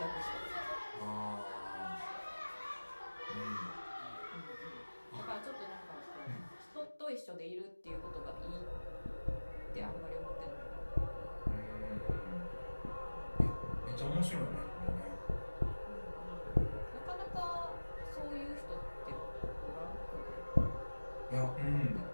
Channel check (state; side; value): inverted; both; correlation -1.00